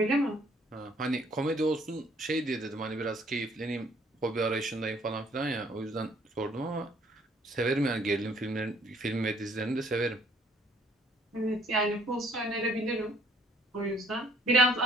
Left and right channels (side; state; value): both; normal; correlation 0.62